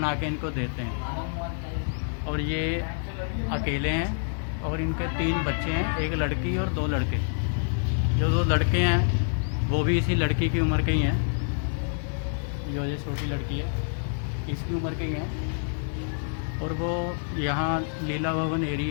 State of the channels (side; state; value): right; silent; digital silence